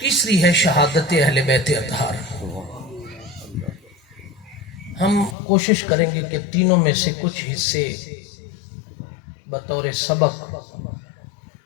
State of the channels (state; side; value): drops out; right; at 5.4 s